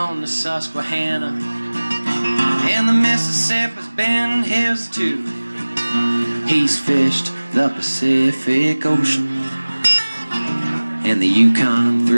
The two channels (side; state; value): both; inverted; correlation -1.00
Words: the Susquehanna, and the Mississippi's been his too. He's fished the Pacific Ocean and the Yukon